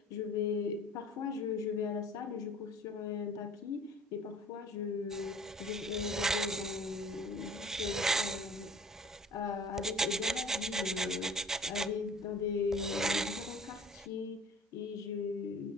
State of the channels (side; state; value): both; normal; correlation 0.48